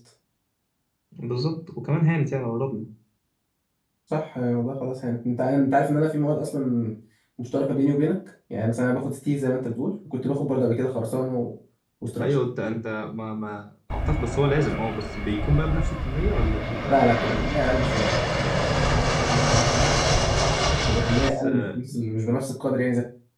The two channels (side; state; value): both; identical; correlation 1.00